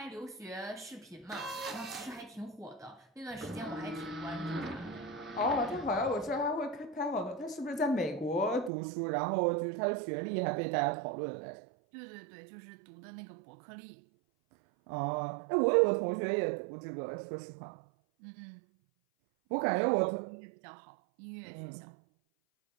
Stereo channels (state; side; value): drops out; left; at 8.7 s